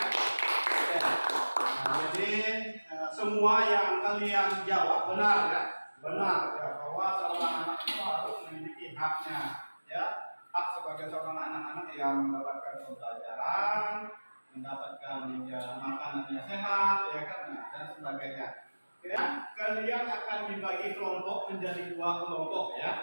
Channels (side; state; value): both; inverted; correlation -1.00